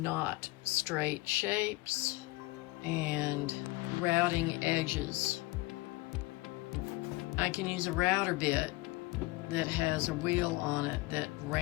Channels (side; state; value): right; quieter; 22.1 dB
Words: straight shapes and routing edges. I can use a router bit that has a wheel on it that